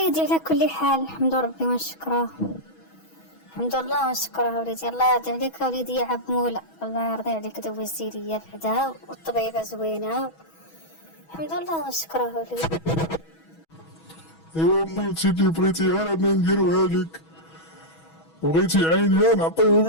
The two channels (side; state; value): right; late; 6.2 ms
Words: على كل حال الحمد ربي ونشكره. الحمد لله ونشكره وليدي. الله يرضي عليك وليدي يا عب مولا، الله يرضي عليك دوزتي ليا بعدا والطبيبة زوينة. الحمد لله ونشكره وليدي. ايوا مامتي اللي بغيتيها انا نديروها لك، بغيتي عينيها نعطيهم